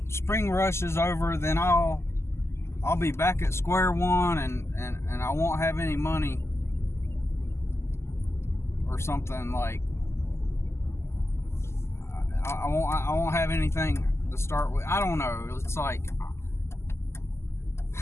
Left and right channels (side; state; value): right; late; 0.13 ms